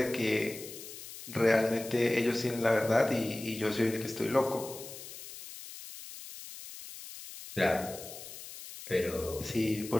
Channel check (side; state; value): left; noise; hiss, 13 dB below the sound